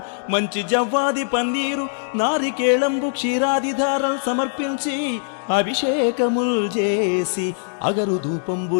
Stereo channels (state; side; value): silent; right; digital silence